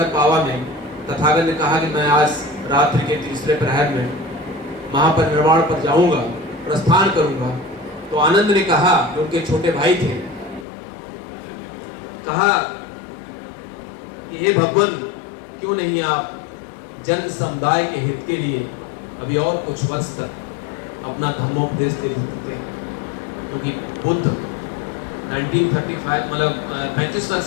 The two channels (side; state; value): right; drops out; at 10.7 s